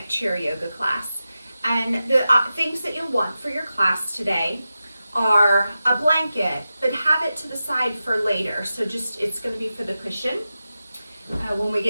chair yoga class. And the things that you'll want for your class today are a blanket, but have it to the side for later. So it's going to be for the cushion when we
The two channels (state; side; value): inverted; both; correlation -0.92